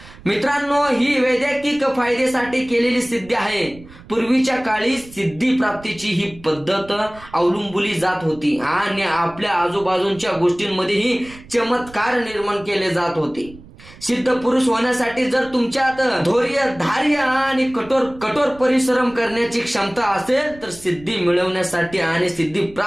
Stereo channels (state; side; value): noise; right; rumble, 20 dB below the sound